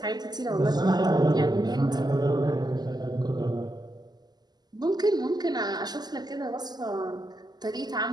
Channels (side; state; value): left; late; 0.20 ms